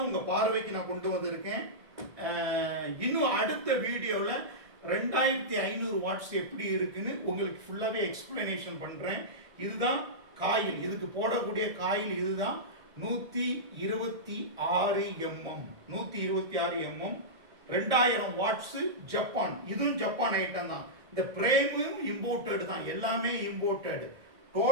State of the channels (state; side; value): late; left; 1.6 ms